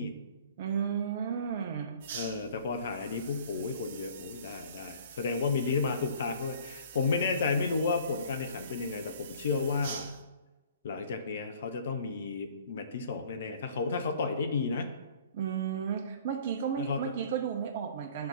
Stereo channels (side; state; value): both; inverted; correlation -0.51